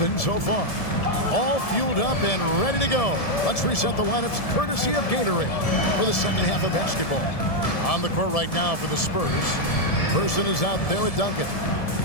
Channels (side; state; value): right; late; 1.7 ms